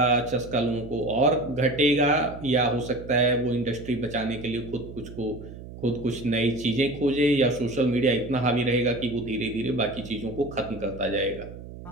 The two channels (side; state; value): right; noise; hum, 14 dB below the sound